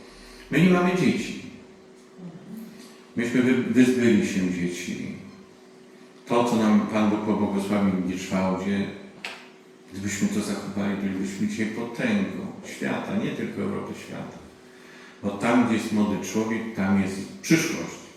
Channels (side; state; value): both; identical; correlation 1.00